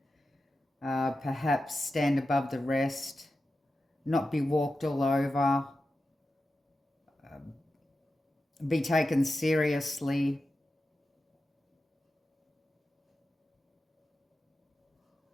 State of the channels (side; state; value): both; normal; correlation 0.91